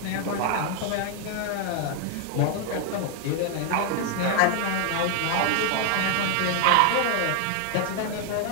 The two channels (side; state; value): both; different; correlation 0.00